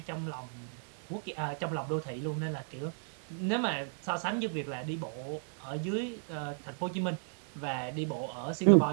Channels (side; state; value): left; silent; 55 dB below the other